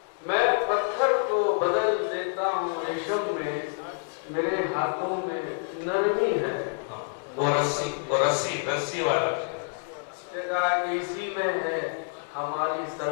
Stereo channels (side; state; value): right; silent; 60 dB below the other